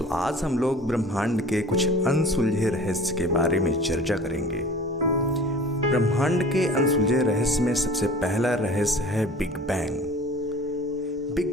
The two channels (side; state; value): both; normal; correlation 0.43